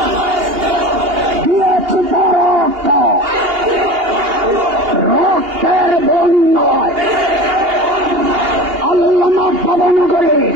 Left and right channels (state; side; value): late; left; 2.8 ms